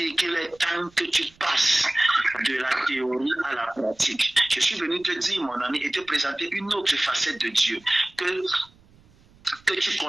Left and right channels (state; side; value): noise; right; rumble, 29 dB below the sound